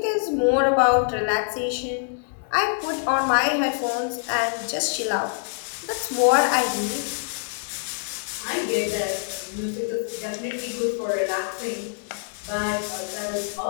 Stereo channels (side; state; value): right; silent; 62 dB below the other